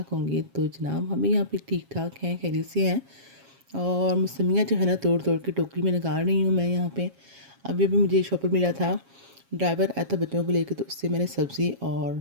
होंगे। तो जनाब हम भी यहाँ पे ठीक ठाक हैं, खैरियत से हैं। और मौसमियाँ जो है ना तोड़ तोड़ के टोकरी में निकाल रही हूँ मैं यहाँ पे। अभी अभी मुझे शॉपर मिला था, ड्राइवर आया था बच्चों को लेकर, तो उससे मैंने सब्ज़ी और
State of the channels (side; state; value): left; late; 7.3 ms